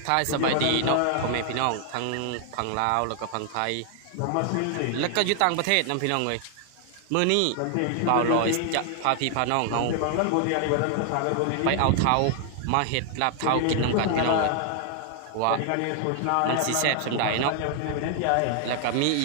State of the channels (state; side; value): different; both; correlation 0.00